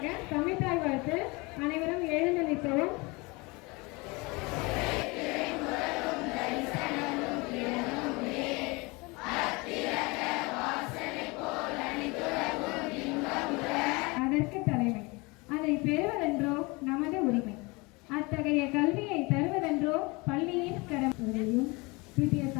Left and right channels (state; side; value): quieter; right; 25.9 dB